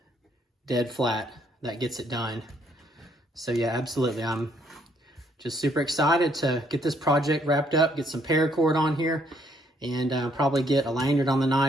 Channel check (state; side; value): normal; both; correlation 0.68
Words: dead flat, that gets it done. So yeah, absolutely, I'm just super excited to get this project wrapped up, get some paracord on here, and probably get a lanyard on the